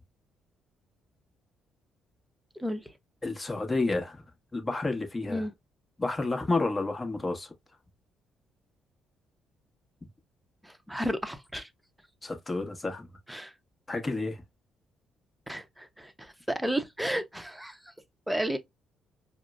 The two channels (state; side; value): normal; both; correlation 0.94